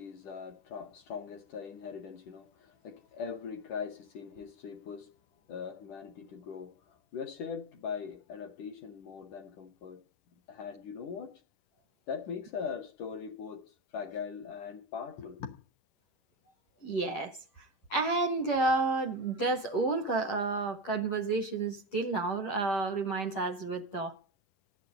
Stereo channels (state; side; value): late; right; 10 ms